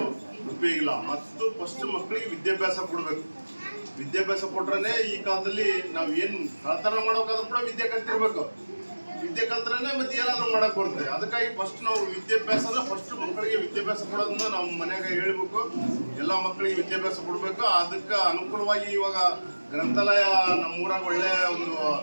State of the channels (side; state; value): both; inverted; correlation -1.00